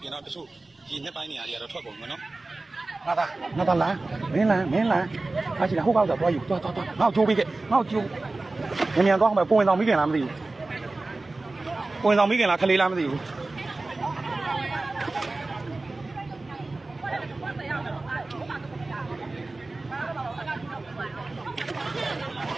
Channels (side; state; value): left; quieter; 3.2 dB